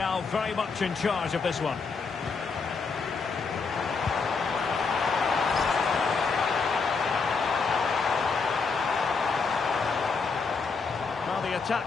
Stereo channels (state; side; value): quieter; right; 4.8 dB